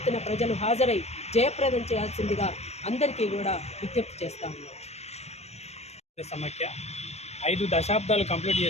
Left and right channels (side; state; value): right; late; 0.31 ms